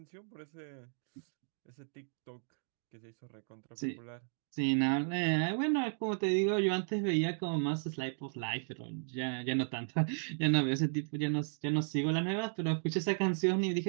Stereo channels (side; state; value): left; silent; digital silence